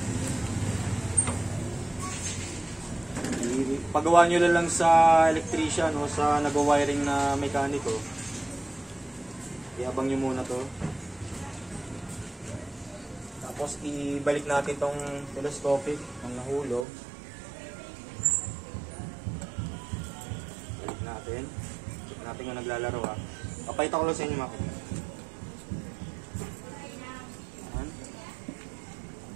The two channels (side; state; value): left; drops out; at 16.9 s